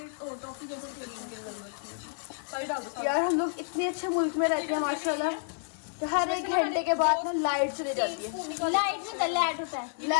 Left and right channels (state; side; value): silent; right; digital silence